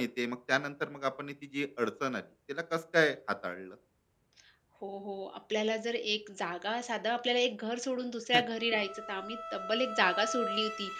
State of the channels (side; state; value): both; identical; correlation 1.00